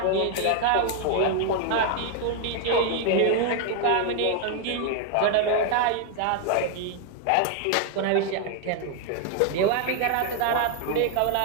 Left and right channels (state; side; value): different; both; correlation 0.00